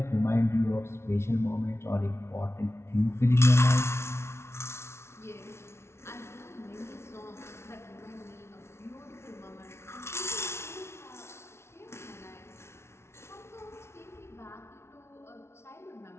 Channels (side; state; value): right; late; 0.13 ms